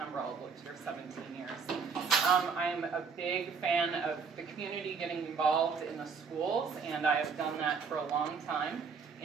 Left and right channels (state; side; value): quieter; left; 5.5 dB